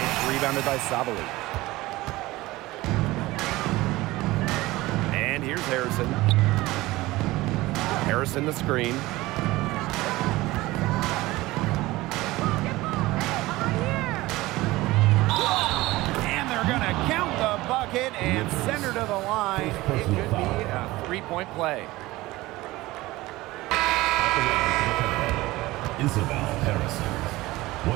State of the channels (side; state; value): left; quieter; 19.1 dB